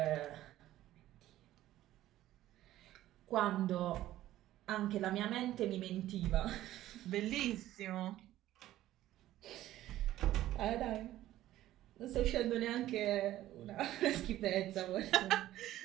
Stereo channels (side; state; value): left; quieter; 14.2 dB